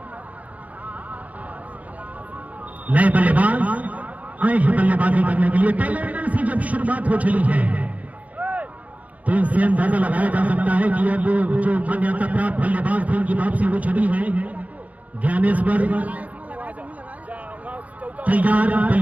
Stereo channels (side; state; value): left; late; 0.071 ms